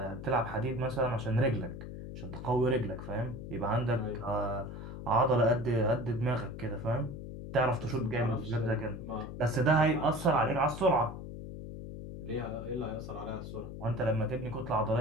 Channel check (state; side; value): noise; left; hum, 9 dB below the sound